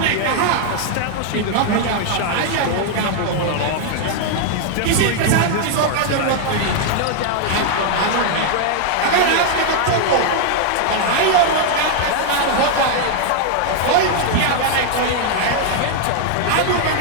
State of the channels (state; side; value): different; both; correlation 0.00